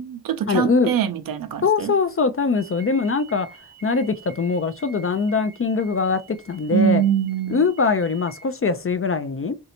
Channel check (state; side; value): normal; both; correlation 0.14